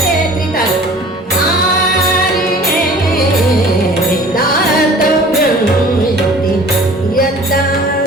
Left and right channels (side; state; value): both; normal; correlation 0.47